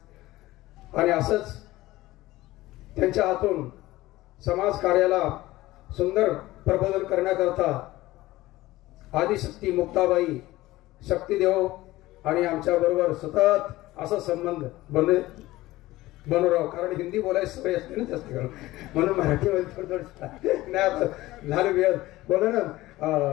आणि असंच त्यांच्या हातून समाज कार्याला सुंदर प्रबोधन करण्याकरता आदिशक्ती मुक्ताबाई, शक्तीदेव आणि आमच्या बरोबर सतत असा संबंध बनवराव. कारण हिंदी बोलायची सवय असते ना जास्त करून, म्हणून मराठीमध्ये थोडं नाही झालं वेळ बोला ना.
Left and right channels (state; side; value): quieter; right; 17.7 dB